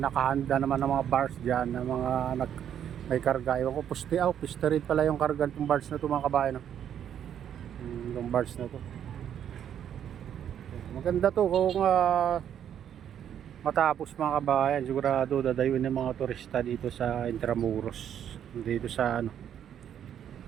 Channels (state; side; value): quieter; left; 9.5 dB